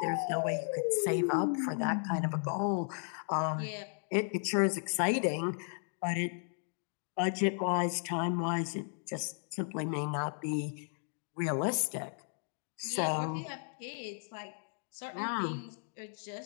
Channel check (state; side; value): silent; right; 55 dB below the other